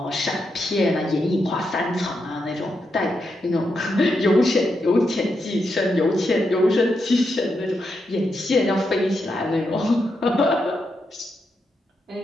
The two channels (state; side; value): normal; both; correlation 0.84